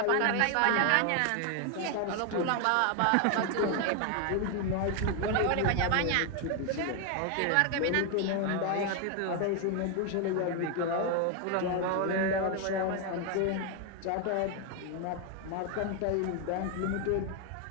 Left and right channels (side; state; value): both; different; correlation 0.01